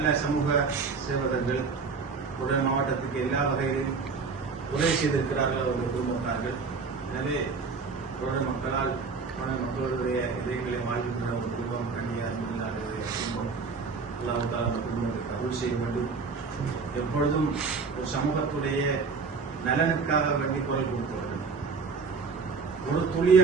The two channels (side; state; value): left; quieter; 4.8 dB